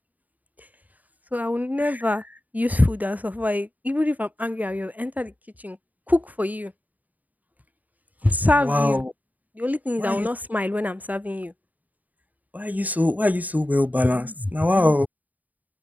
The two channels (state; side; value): late; left; 0.078 ms